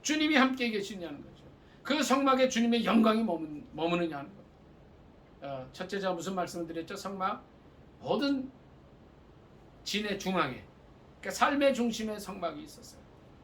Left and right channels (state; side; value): identical; both; correlation 1.00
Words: 주님이 함께 계시냐는 거죠. 그 성막에 주님의 영광이 머무느냐는 거죠. 첫째 제가 무슨 말씀을 드렸죠? 성막 모든 진의 중앙에 그러니까 삶의 중심에 성막이 있었어요.